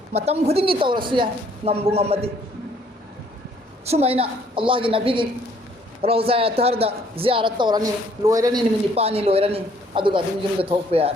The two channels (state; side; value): normal; both; correlation 0.63